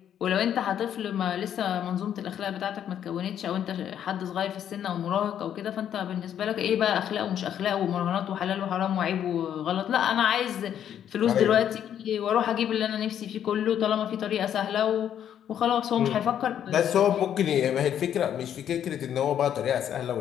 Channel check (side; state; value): right; quieter; 9.7 dB